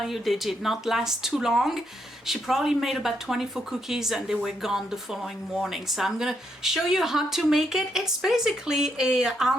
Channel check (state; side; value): normal; both; correlation 0.78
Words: you, they did not last too long. She probably made about 24 cookies and they were gone the following morning. So I'm gonna show you how to make it. It's basically a